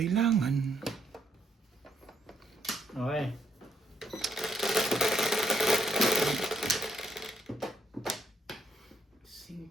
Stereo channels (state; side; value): normal; both; correlation 0.75